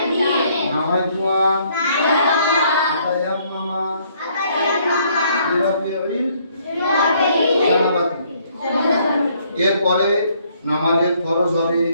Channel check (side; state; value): both; inverted; correlation -0.66